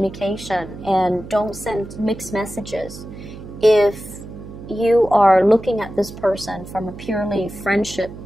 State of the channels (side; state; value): right; noise; hum, 13 dB below the sound